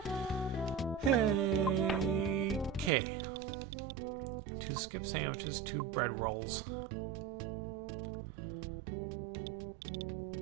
anything. Hey, okay. 2 skip sandwiches, 2 bread rolls.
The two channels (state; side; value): drops out; left; at 2.9 s